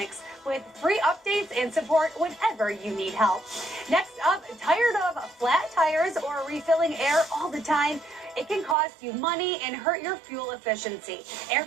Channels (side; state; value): left; drops out; at 8.8 s